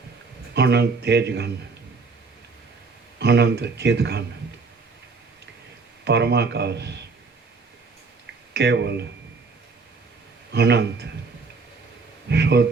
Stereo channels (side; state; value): left; quieter; 4.4 dB